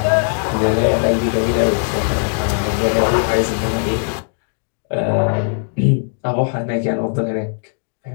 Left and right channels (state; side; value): silent; right; 67 dB below the other